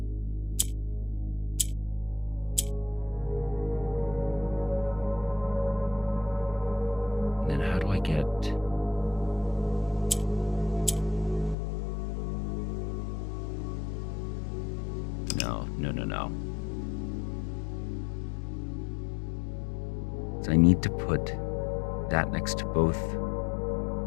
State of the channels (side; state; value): right; drops out; at 11.6 s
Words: Then how do I get... No. So I need to put that next to both